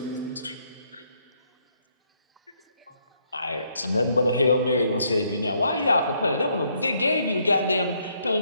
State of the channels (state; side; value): inverted; both; correlation -0.71